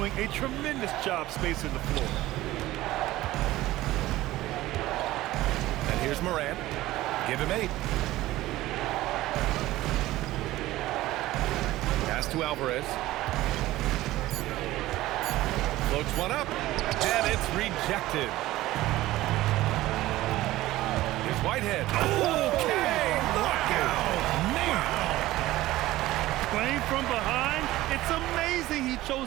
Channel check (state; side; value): quieter; left; 16.6 dB